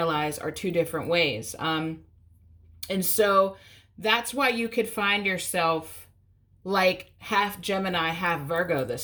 are two different ways. And so that's why you could find yourself like half Gemini, half Virgo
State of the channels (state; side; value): identical; both; correlation 1.00